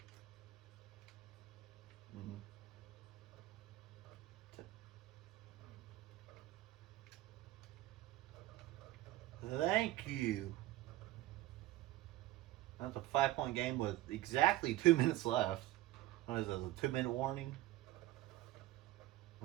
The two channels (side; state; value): left; quieter; 16.6 dB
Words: Mm-hmm. Thank you. That's a 5-point game with exactly 2 minutes left. What is this, a 2-minute warning?